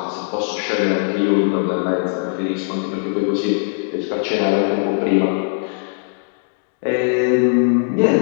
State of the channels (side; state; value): right; silent; 61 dB below the other